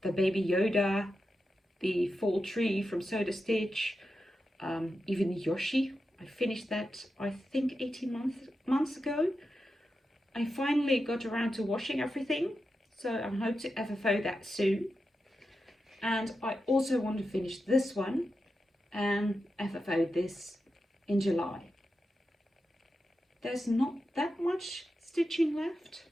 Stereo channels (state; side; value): normal; both; correlation 0.89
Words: the Baby Yoda, the Fall Tree from Soda Stitch, even the Yoshi. I finished that, I think, 18 months ago. I finally got around to washing everything, so I hope to FFO that soon. And I also want to finish this one and FFO this in July. There's not that much stitching left.